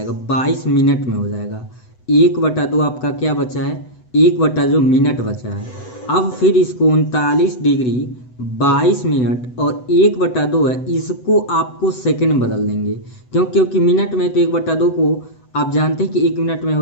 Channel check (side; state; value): right; late; 8.0 ms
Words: 22 मिनट में हो जाएगा। 1/2 आपका क्या बचा है, 1/2 मिनट बचा है। अब फिर इसको 39 डिग्री 22 मिनट और 1/2 है, इसको आपको सेकंड में बदल देंगे, क्योंकि मिनट में तो 1/2 को आप जानते हैं कि 1 मिनट में